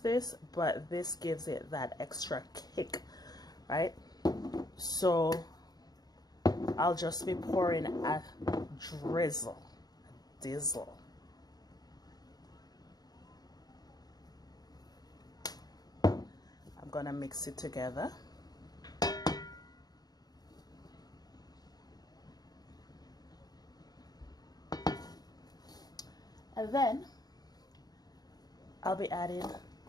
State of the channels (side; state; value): right; late; 0.19 ms